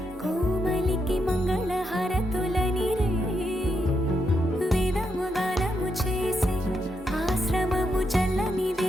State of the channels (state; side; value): normal; both; correlation 0.81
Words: కోమలికి మంగళ హారతులనిరే వేదము గానము చేసే ఆశ్రమము చల్లని